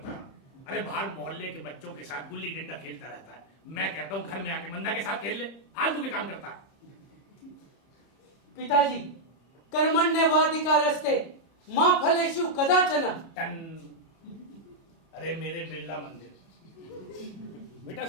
है। अरे बाहर मोहल्ले के बच्चों के साथ गुल्ली डंडा खेलता रहता है, मैं कहता हूँ घर में आके मंदा के साथ खेल ले, फालतू के काम करता है। पिताजी, कर्मण्येवाधिकारस्ते मां फलेषु कदाचन। अरे मेरे बिरला मंदिर, बेटा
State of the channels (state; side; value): late; right; 30 ms